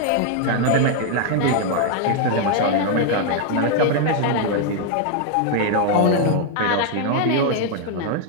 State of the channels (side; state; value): both; different; correlation 0.00